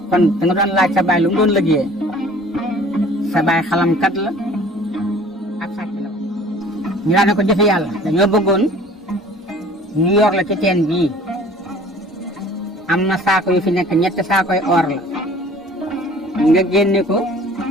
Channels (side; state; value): both; normal; correlation 0.49